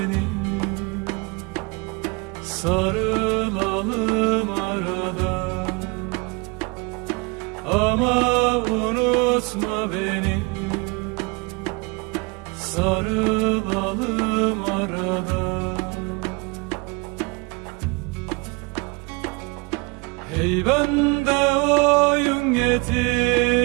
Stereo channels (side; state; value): left; quieter; 28.2 dB